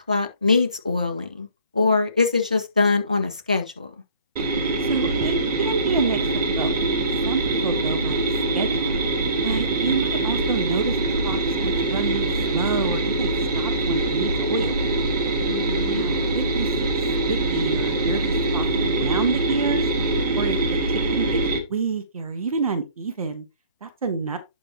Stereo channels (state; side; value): inverted; both; correlation -0.48